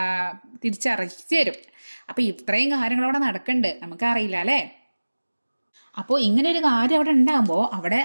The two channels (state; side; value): inverted; both; correlation -1.00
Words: തിരിച്ചറിയിച്ച് തരും. അപ്പോൾ ഇത്രയും കാര്യങ്ങളവിടെ നടക്കുന്നുണ്ട്, നമുക്കറിയില്ല അല്ലേ. അപ്പോൾ ഇങ്ങനെ ഒരു കാര്യം അവിടെ ഉണ്ടാകുമ്പോൾ അവിടെ